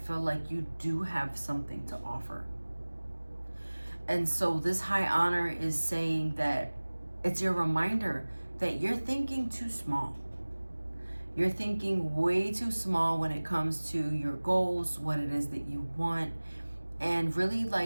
like you do have something to offer. And so this high honor is saying that it's your reminder that you're thinking too small. You're thinking way too small when it comes to your goals, what it is that you want, and really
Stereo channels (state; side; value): inverted; both; correlation -1.00